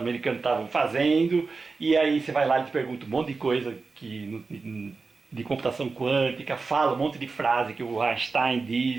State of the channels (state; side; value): quieter; left; 4.2 dB